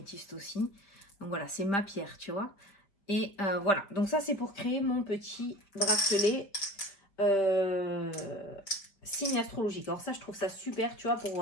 aussi. Donc, voilà, c'est ma pierre, tu vois. Et voilà. Donc, ça, c'est pour créer mon petit bracelet signe astrologique. Alors, ça, je trouve ça super, tu vois,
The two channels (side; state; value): right; late; 5.1 ms